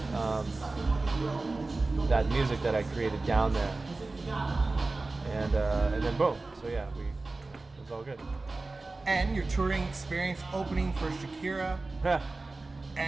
music that I created down there, and then boom. So yeah, it was all good. And your touring experience opening for Shakira,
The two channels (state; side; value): quieter; left; 3.4 dB